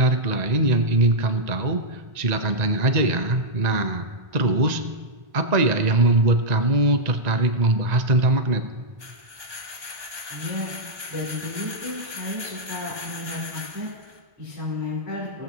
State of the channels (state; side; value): late; left; 1.2 ms